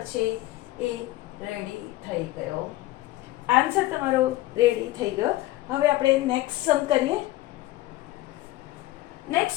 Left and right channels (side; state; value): right; quieter; 17.0 dB